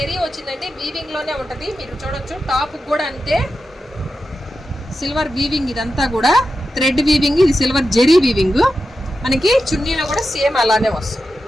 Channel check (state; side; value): normal; both; correlation 0.90